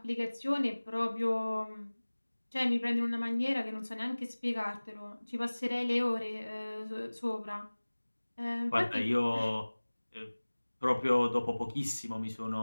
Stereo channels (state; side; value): inverted; both; correlation -1.00